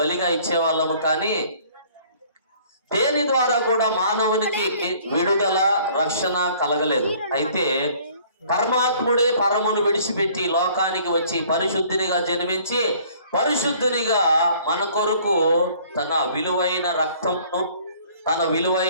ఇచ్చేవాళ్ళము. కానీ దేని ద్వారా కూడా మానవునికి విడుదల, రక్షణ కలగలేదు. అయితే పరమాత్ముడే పరమును విడిచిపెట్టి లోకానికి వచ్చి పరిశుద్ధునిగా జన్మించి పరిశుద్ధునిగా మన కొరకు తన విలువైన రక్తమును, తన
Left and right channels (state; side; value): inverted; both; correlation -0.56